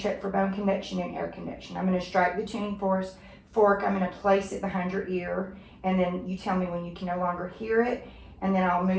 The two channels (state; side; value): identical; both; correlation 1.00